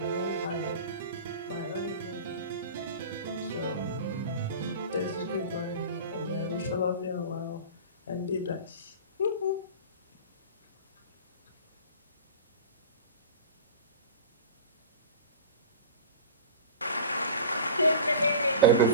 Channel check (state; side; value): inverted; both; correlation -0.33